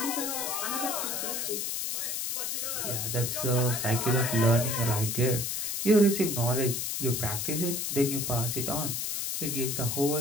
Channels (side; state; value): left; noise; hiss, 1 dB below the sound